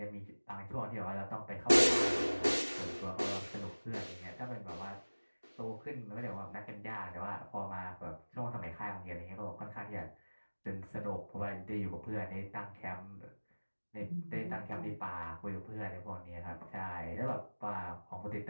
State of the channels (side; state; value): both; inverted; correlation -1.00